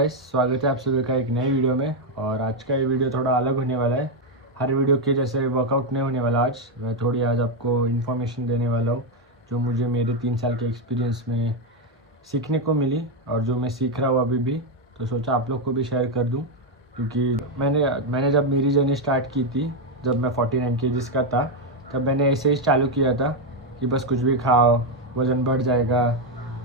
स्वागत है आप सभी का एक नई वीडियो में। और आज का ये वीडियो थोड़ा अलग होने वाला है। हर वीडियो के जैसे वर्कआउट नहीं होने वाला। आज मैं थोड़ी आज आपको इन्फॉर्मेशन देने वाला हूँ जो मुझे मेरे 3 साल के एक्सपीरियंस में सीखने को मिली और जो मैं सीख रहा हूँ अभी भी। तो सोचा आप लोग को भी शेयर कर दूँ, क्योंकि मैंने जब मेरी जर्नी स्टार्ट की थी, जब मैं 49 kg का था, तब मैंने ऐसे ही चालू किया था कि बस कुछ भी खाओ, वज़न बढ़ जाएगा।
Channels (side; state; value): both; normal; correlation 0.05